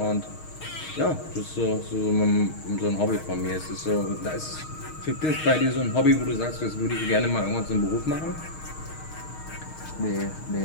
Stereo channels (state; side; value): late; right; 6.4 ms